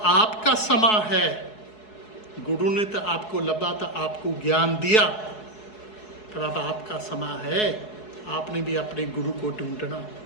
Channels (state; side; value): late; right; 4.7 ms